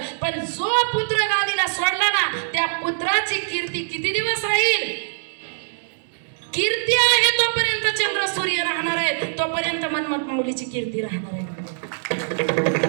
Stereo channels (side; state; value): left; silent; digital silence